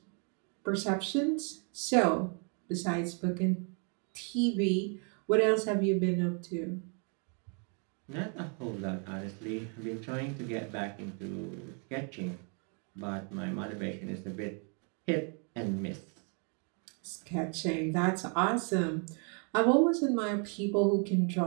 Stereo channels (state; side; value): quieter; left; 38.8 dB